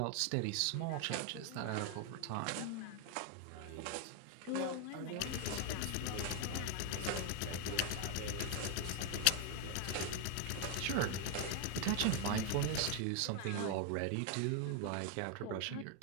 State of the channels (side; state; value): both; different; correlation 0.00